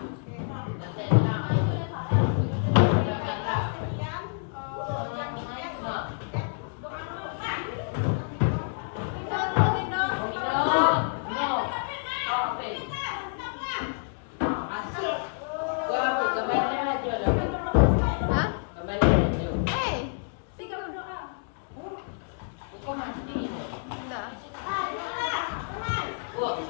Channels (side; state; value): right; silent; digital silence